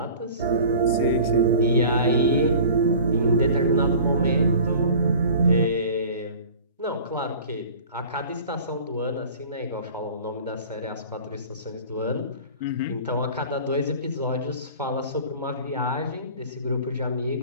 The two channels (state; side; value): inverted; both; correlation -0.42